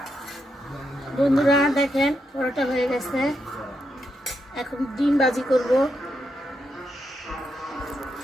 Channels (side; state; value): both; normal; correlation 0.82